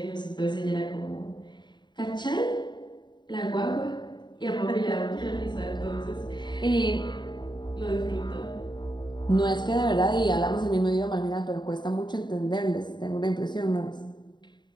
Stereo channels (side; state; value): right; late; 0.22 ms